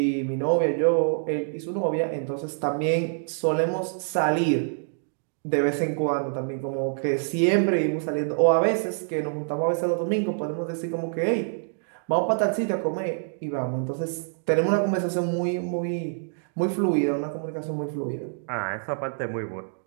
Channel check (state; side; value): silent; left; digital silence